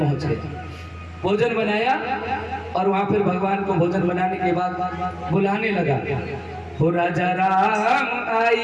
गए। भोजन बनाया और वहां फिर भगवान को भोजन बनाने के बाद बुलाने लगा, हो राजा राम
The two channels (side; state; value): both; identical; correlation 1.00